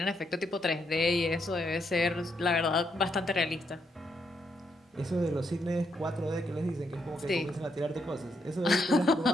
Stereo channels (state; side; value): normal; both; correlation 0.77